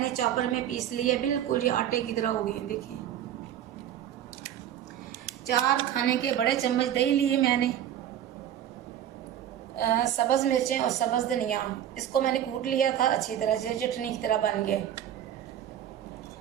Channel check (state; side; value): quieter; left; 10.7 dB